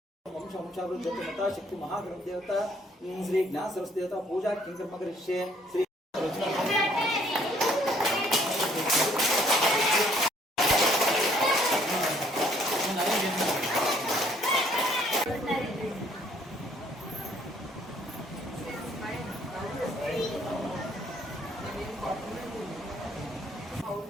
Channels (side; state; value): both; normal; correlation 0.63